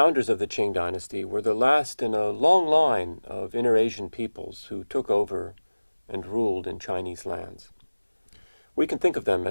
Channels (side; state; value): both; inverted; correlation -1.00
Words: of the Qing dynasty, were the last in a long line of inter-Asian peoples who took over and ruled in Chinese lands. We can think of them